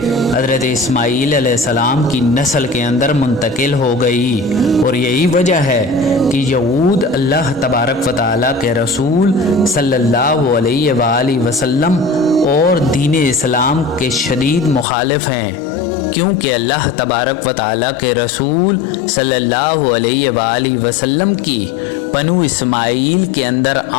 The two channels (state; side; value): drops out; right; at 14.9 s